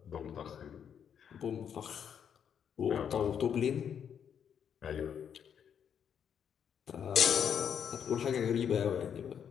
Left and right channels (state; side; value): quieter; right; 8.2 dB